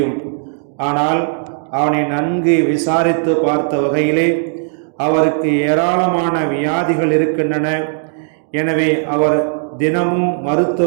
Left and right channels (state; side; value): silent; left; digital silence